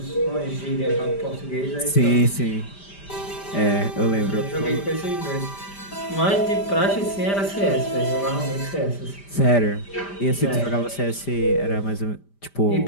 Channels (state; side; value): late; right; 5.0 ms